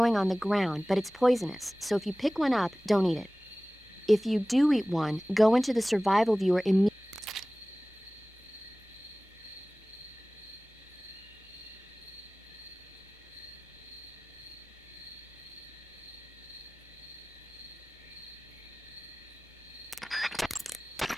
on the ground, but it's poisonous, so if you pick one up, don't eat it. If you do eat one, go into the survival viewer immediately.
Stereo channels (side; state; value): both; normal; correlation 0.98